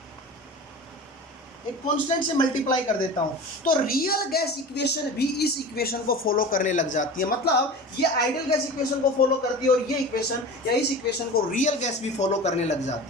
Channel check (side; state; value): both; normal; correlation 0.34